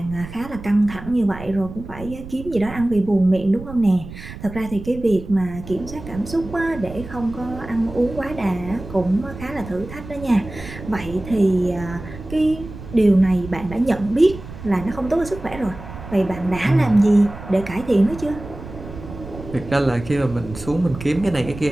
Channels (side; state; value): right; noise; rumble, 13 dB below the sound